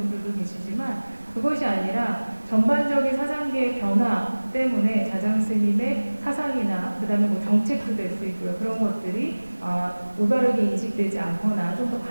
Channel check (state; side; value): inverted; both; correlation -1.00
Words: 계시지만 그것이 아니라 전반적인 사상계의 변화 때문에 자장스님의 사상이나 그 다음에 정책도 될 수 있고요. 그런 것들이 올바르게 인식되지 않거나 좀 더